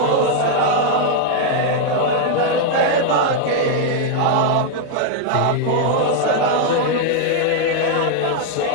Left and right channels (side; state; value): both; different; correlation 0.00